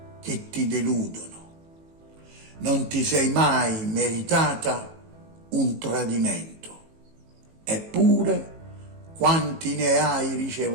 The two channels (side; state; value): left; late; 18 ms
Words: che ti deludono, non ti sei mai meritata un tradimento, eppure quanti ne hai